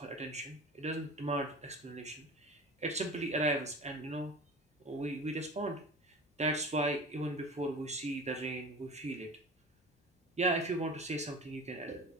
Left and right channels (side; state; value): both; normal; correlation 0.35